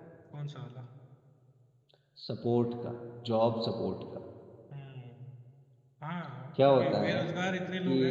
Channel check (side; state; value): both; identical; correlation 1.00